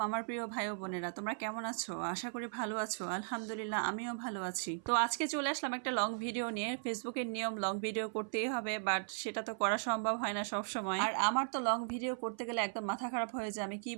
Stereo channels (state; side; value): silent; left; 53 dB below the other